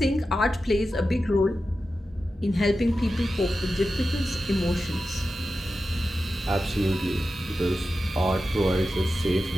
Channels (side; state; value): both; normal; correlation 0.92